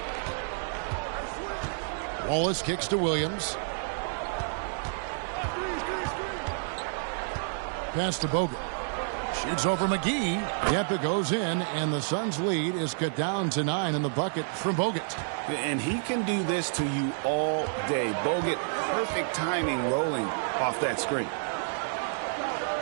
Wallace kicks to Williams. Pass to Bogut. Shoots over McGee. Yep, it goes in, and the Suns' lead is cut down to 9 in the bucket from Bogut. And he can do this to you all day. Bogut, perfect timing rolling off that screen.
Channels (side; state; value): left; silent; digital silence